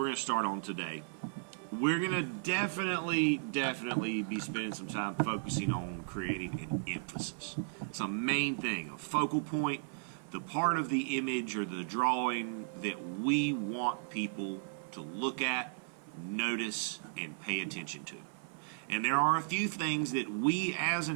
going to start on today, we're going to definitely be spending some time focusing on creating an emphasis. It's a main thing, a focal point, the part of the image or the drawing that we want people to look at, notice, and pay attention to. And there are a few things that we as an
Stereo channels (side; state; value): left; silent; 54 dB below the other